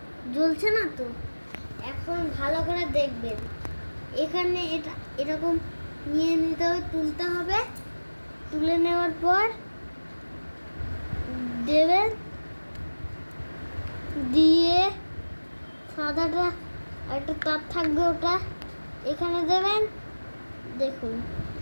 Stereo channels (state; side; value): inverted; both; correlation -1.00